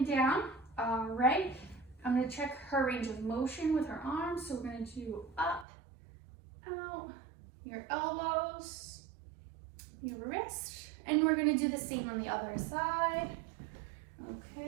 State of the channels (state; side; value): drops out; left; at 5.7 s